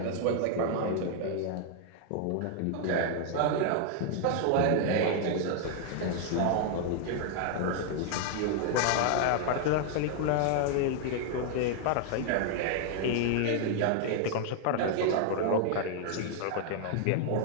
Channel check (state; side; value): different; both; correlation 0.00